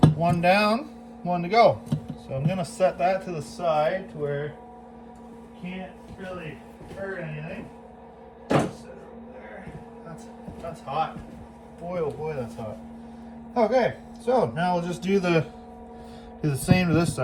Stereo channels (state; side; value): identical; both; correlation 1.00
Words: One down, one to go. So I'm gonna set that to the side to where it can't really hurt anything. Set it over there. That's hot. Boy, oh boy, that's hot. Okay, so now we'll just do the same to this